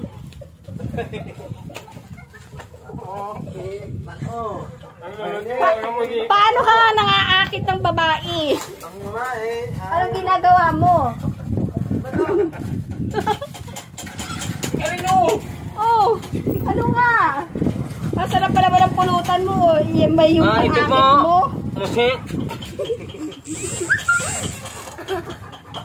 Paano ka nga nang-aakit ng babae? Anong ginagawa mo? Oh, ano nga? Masarap pala ba ng pulutan mo? Yan ba yung pang-akit mo?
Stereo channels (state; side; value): identical; both; correlation 1.00